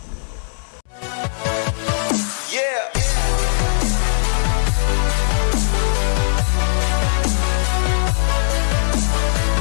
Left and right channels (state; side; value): silent; right; 62 dB below the other